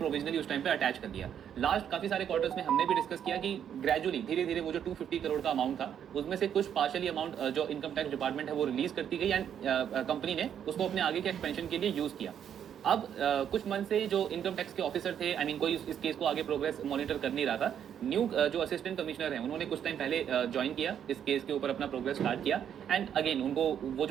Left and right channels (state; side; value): quieter; left; 9.0 dB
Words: उस टाइम पे अटैच कर दिया। लास्ट काफी सारे क्वार्टर्स में हमने भी डिस्कस किया कि ग्रेजुअली धीरे धीरे वो जो 250 करोड़ का अमाउंट था उसमें से कुछ पार्शियली अमाउंट जो इनकम टैक्स डिपार्टमेंट है वो रिलीज करती गई, एंड कंपनी ने उसको अपने आगे के एक्सपेंशन के लिए यूज किया। अब कुछ मंथ से जो इनकम टैक्स के ऑफिसर थे, आई मीन कोई इस केस को आगे प्रोग्रेस मॉनिटर कर नहीं रहा था। न्यू जो असिस्टेंट कमिश्नर हैं उन्होंने कुछ टाइम पहले ज्वाइन किया, इस केस के ऊपर अपना प्रोग्रेस स्टार्ट किया, एंड अगेन उनको वो